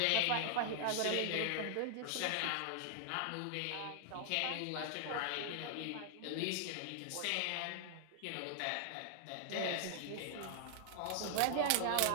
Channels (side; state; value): both; different; correlation -0.01